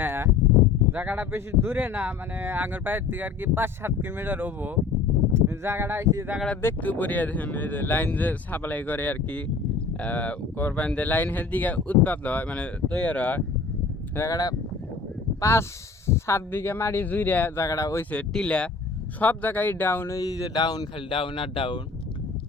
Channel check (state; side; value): quieter; right; 4.6 dB